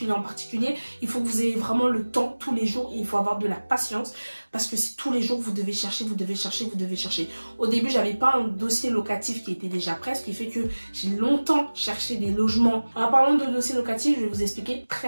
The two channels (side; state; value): both; inverted; correlation -1.00